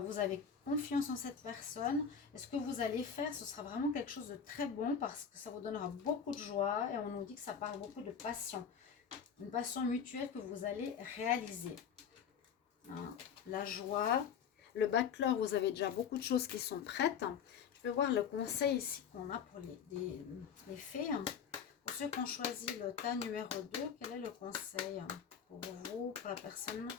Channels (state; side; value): quieter; right; 7.1 dB